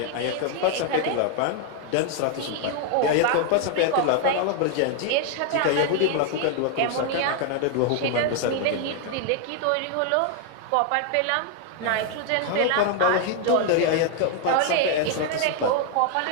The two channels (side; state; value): both; different; correlation 0.00